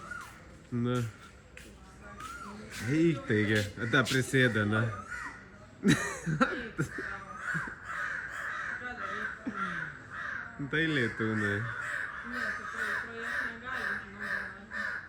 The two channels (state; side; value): identical; both; correlation 1.00